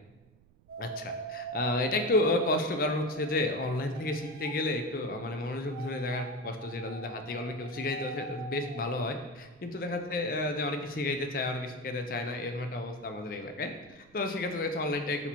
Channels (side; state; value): right; noise; rumble, 28 dB below the sound